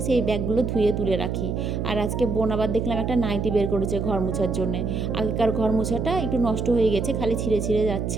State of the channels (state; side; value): noise; right; hum, 2 dB below the sound